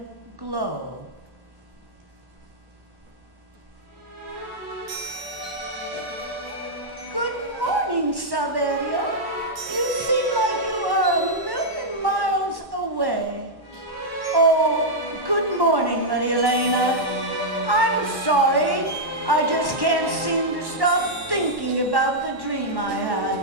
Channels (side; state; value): left; late; 1.1 ms